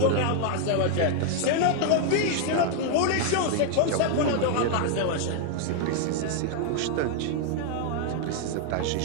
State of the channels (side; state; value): both; different; correlation 0.00